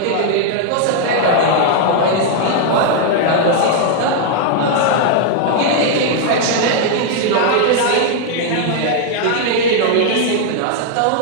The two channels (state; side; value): different; both; correlation 0.00